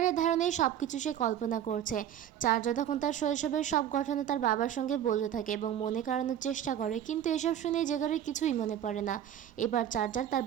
ধারণায় সব কিছু সে কল্পনা করছে। চার্জার তখন তার শৈশবের সব ঘটনা তার বাবার সঙ্গে বলতে থাকে এবং মনে করানোর চেষ্টা করে, কিন্তু এসব শুনে জেগারের কিছুই মনে পড়ে না। এবার চার্জার তার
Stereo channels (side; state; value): left; quieter; 10.4 dB